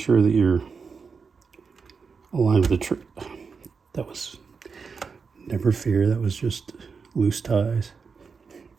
that you're aligned with the that was, never fear, that was just loose ties.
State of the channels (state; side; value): quieter; left; 5.3 dB